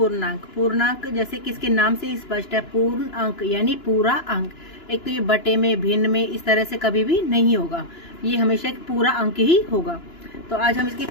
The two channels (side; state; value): right; late; 2.9 ms